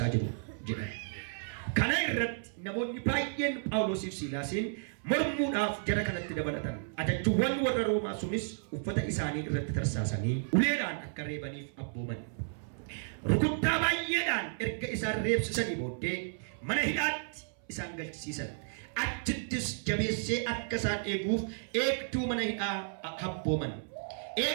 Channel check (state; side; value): silent; left; 56 dB below the other